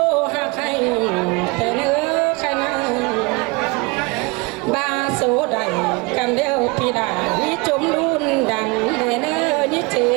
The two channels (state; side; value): quieter; left; 26.9 dB